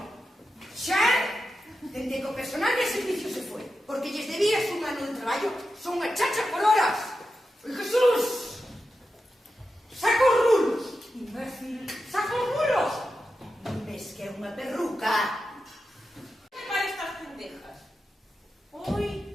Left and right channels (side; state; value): both; normal; correlation 0.90